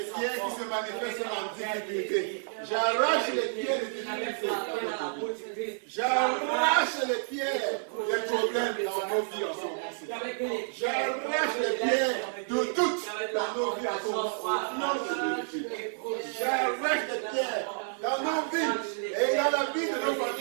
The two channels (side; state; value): left; silent; digital silence